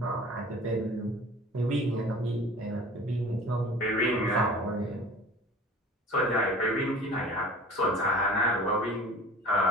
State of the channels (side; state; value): both; normal; correlation 0.43